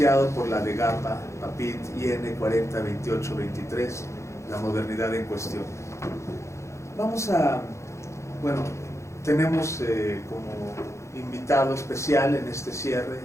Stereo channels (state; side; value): late; right; 0.14 ms